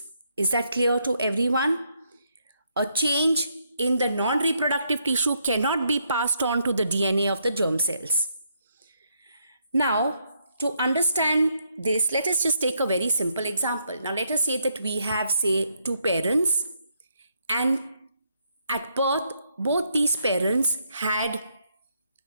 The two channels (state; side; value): inverted; both; correlation -0.75